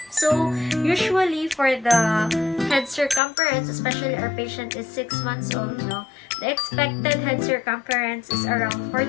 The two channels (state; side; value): drops out; right; at 3.2 s